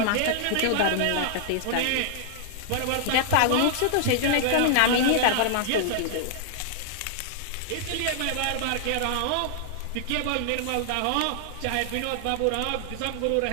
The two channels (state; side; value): different; both; correlation -0.01